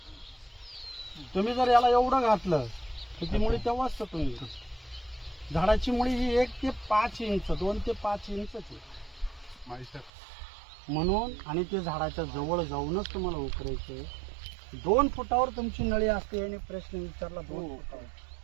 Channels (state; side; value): drops out; left; at 10.1 s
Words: तुम्ही जर याला एवढं घातलं तर ती मुळी तेव्हाच तुम्ही झाडाची मुळी ही 1 ते 5 इंच 2 ते 5 इंच म्हणून आणि ते झाडाच्या जवळ जाऊनच तुम्हाला उकरायचं. 2 फुटावर तुमची नळी असते आणि प्रश्न विचारला 2 फुटावर.